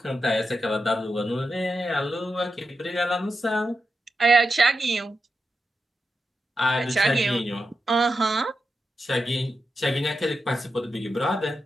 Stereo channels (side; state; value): both; normal; correlation 0.89